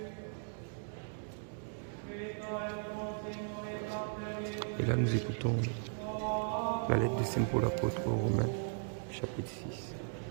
Et là, nous écoutons la lettre de Saint Paul apôtre aux Romains, chapitre 6,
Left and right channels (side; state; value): left; silent; digital silence